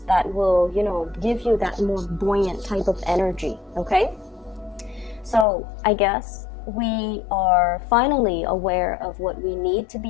that will, give you that more buoyant type of energy, okay? So I guess we are finally aware of what we need to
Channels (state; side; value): drops out; right; at 5.5 s